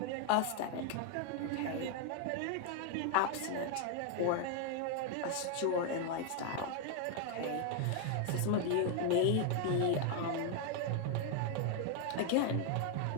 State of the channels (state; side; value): different; both; correlation 0.00